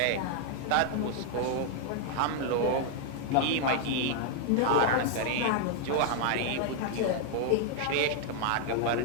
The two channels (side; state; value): both; different; correlation 0.00